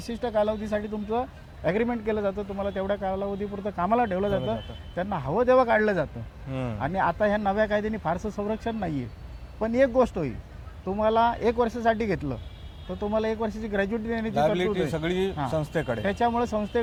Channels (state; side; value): identical; both; correlation 1.00